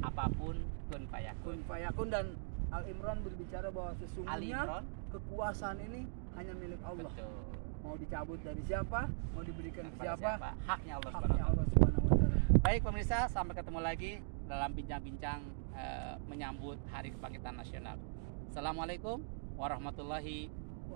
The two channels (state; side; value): silent; left; digital silence